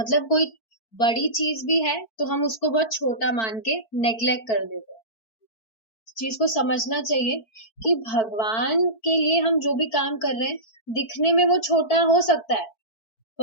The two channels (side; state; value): right; late; 4.5 ms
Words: कोई बड़ी चीज भी है तो हम उसको बहुत छोटा मान के नेग्लेक्ट कर देते हैं। इस चीज को समझना चाहिए कि भगवान के लिए हम जो भी काम कर रहे हैं, दिखने में वो छोटा हो सकता है,